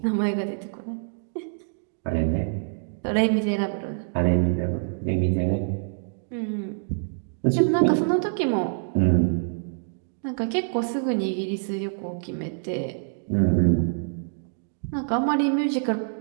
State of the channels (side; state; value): left; silent; digital silence